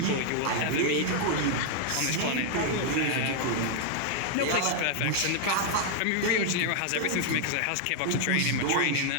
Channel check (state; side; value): different; both; correlation 0.00